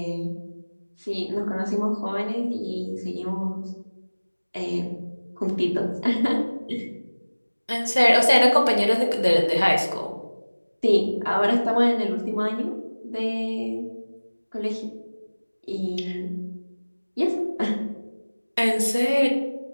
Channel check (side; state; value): both; inverted; correlation -1.00